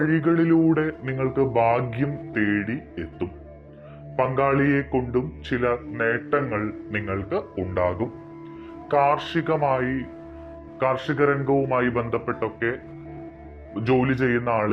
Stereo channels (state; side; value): identical; both; correlation 1.00